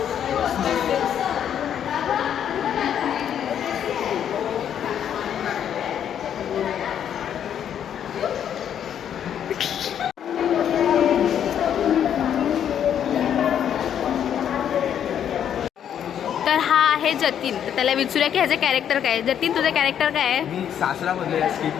तर हा आहे जतीन. तर त्याला विचारूया की ह्याचं कॅरेक्टर काय आहे. जतीन, तुझं कॅरेक्टर काय आहे? मी सासरा मध्ये या स्किट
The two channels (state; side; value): quieter; right; 9.3 dB